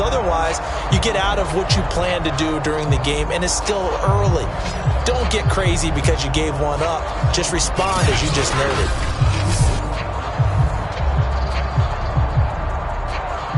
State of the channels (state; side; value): identical; both; correlation 1.00